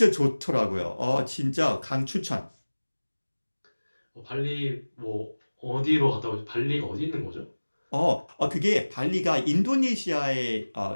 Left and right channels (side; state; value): both; inverted; correlation -1.00